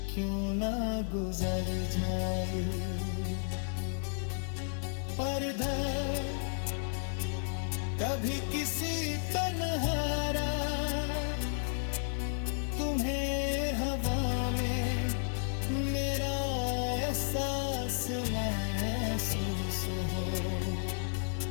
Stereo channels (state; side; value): silent; right; 56 dB below the other